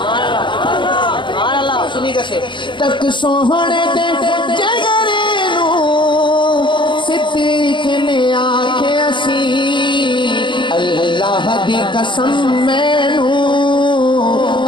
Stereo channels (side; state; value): right; late; 0.23 ms